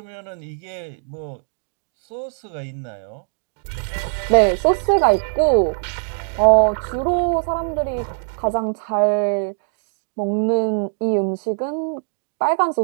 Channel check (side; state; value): left; silent; digital silence